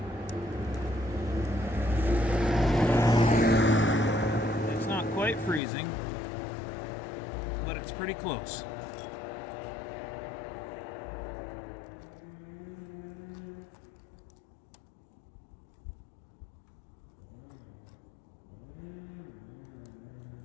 It's not quite freezing, but it's pretty close.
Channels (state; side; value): drops out; right; at 5.6 s